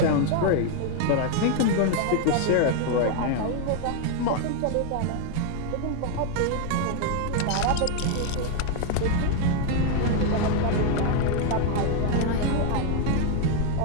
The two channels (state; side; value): different; both; correlation 0.00